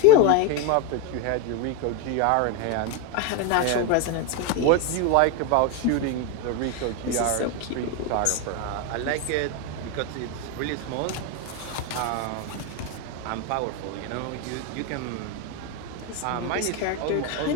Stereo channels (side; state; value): both; different; correlation 0.02